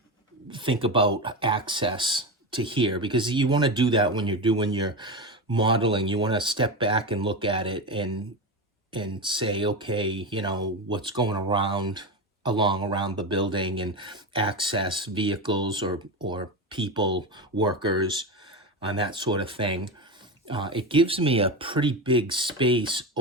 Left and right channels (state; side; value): normal; both; correlation 0.19